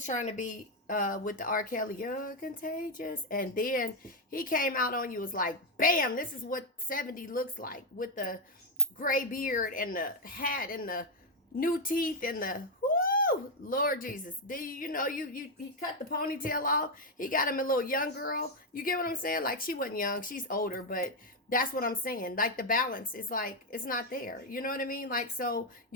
trying to be with the R. Kelly, you're contagious, and then he came out on you, was like, bam, this is what 70 looks like, with the gray beard and the hat and the new teeth and the whoo, Lord Jesus. You cut the ponytail off. He got him a little young girl. You get what I'm saying? Like, she wasn't young, she's older, but that's what I'm saying. Like, the balance is like, it's not there. You know what I mean? Like, so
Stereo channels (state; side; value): normal; both; correlation 0.03